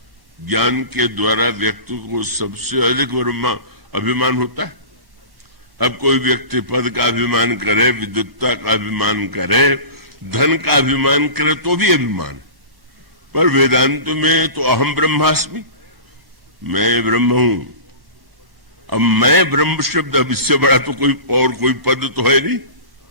ज्ञान के द्वारा व्यक्ति को सबसे अधिक अभिमान होता है। अब कोई व्यक्ति पद का अभिमान करे, विद्वत्ता का अभिमान करे, धन का अभिमान करे तो भी अभिमान है। पर वेदांत में तो अहम ब्रह्मास्मि, मैं ब्रह्म हूं। अब मैं ब्रह्म शब्द, अब इससे बड़ा तो कोई पद तो है नहीं।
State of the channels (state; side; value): late; left; 1.1 ms